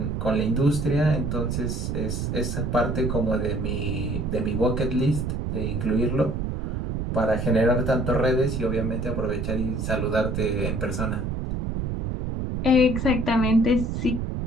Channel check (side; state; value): right; noise; rumble, 2 dB below the sound